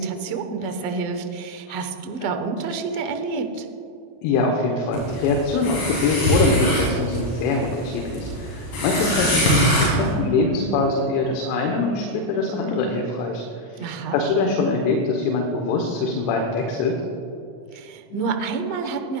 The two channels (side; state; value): right; late; 34 ms